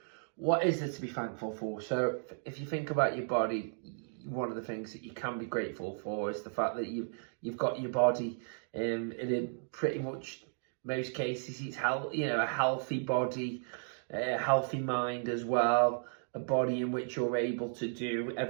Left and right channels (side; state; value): left; silent; digital silence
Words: what is there to be thankful for. So if you think about your body, one of the things that you can be grateful for is the fact that you've got your body, and in pretty much most cases it's a healthy body, a healthy mind as well, a body in which you're able to do